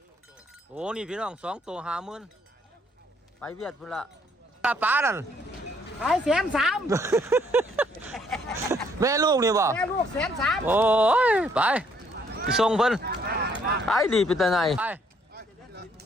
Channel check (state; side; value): normal; both; correlation 0.67